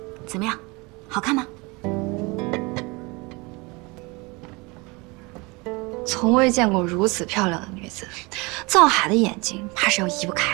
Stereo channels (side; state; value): left; quieter; 26.2 dB